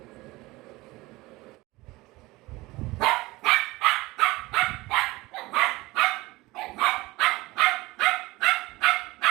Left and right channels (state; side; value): quieter; left; 20.5 dB